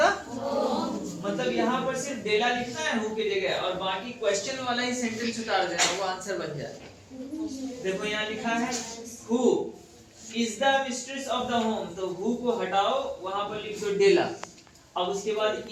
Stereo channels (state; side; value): identical; both; correlation 1.00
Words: मतलब यहाँ पर सिर्फ डेला लिखना है हु की जगह, और बाकी क्वेश्चन वाला ही सेंटेंस उतार देना, वो आंसर बन जाए। देखो यहाँ लिखा है who is the mistress of the home, तो हु को हटाओ, वहां पर लिख दो डेला। अब उसके बाद